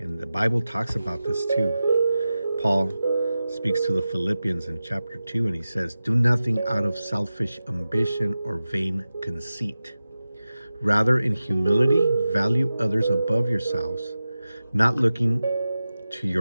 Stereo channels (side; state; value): both; inverted; correlation -0.94